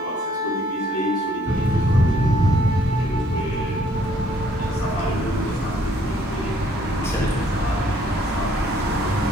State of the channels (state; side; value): normal; both; correlation 0.64